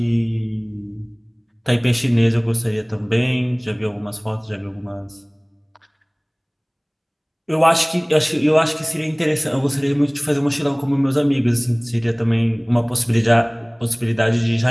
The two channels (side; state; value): both; identical; correlation 1.00